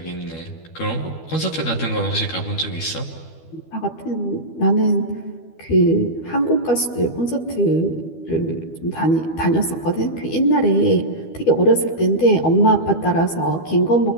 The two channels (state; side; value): late; right; 12 ms